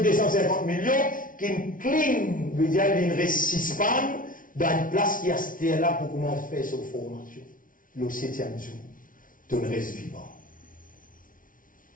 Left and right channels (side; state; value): right; late; 0.39 ms